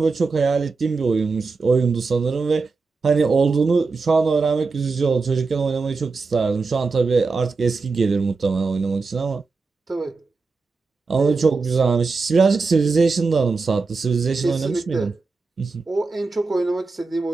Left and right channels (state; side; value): quieter; left; 4.2 dB